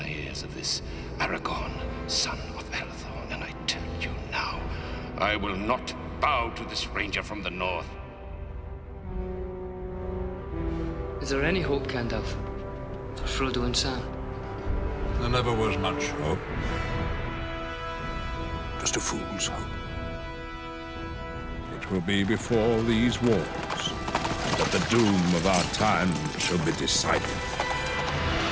ears of this Aragorn, son of Arathorn, and I tell you now, I will not bow to this ranger from the north. Is there any hope, Gandalf, for Frodo and Sam? There never was much hope. Just a fool's hope. It will be before these wars that the doom of our time shall be decided.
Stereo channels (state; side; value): identical; both; correlation 1.00